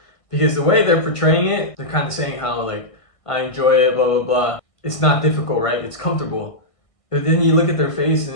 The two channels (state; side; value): late; right; 1.6 ms